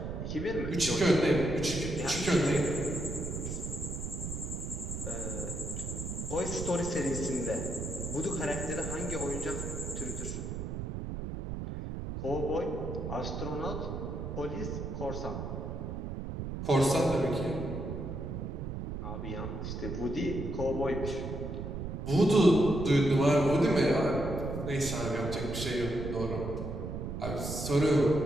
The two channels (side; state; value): right; noise; rumble, 5 dB below the sound